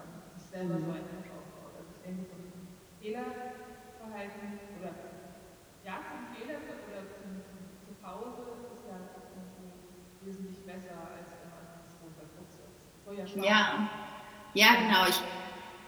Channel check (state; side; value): identical; both; correlation 1.00